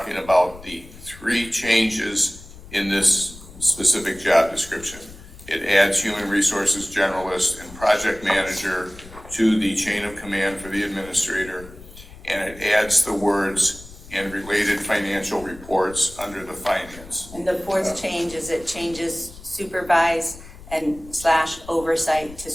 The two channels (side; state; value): left; noise; rumble, 18 dB below the sound